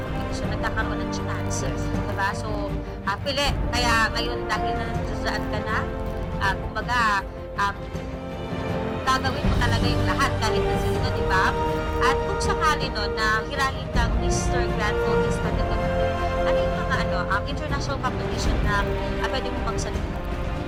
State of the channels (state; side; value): identical; both; correlation 1.00